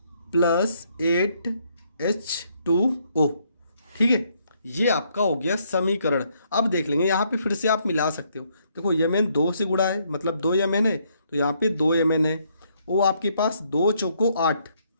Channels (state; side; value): inverted; both; correlation -0.71